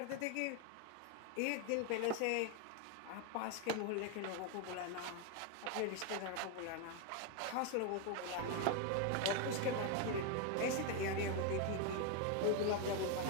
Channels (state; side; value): different; both; correlation 0.01